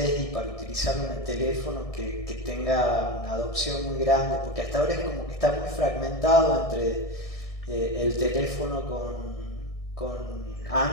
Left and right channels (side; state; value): right; late; 1.6 ms